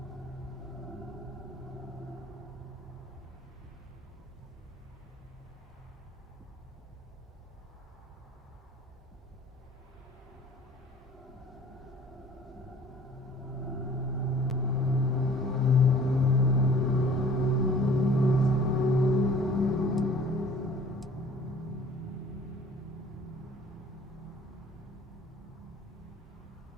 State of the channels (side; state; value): both; normal; correlation 0.51